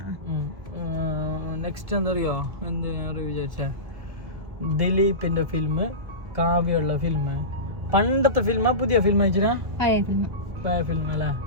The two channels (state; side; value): late; left; 1.7 ms